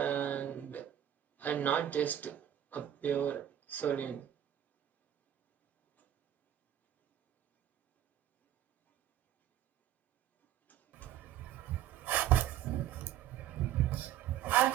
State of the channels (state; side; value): quieter; left; 11.2 dB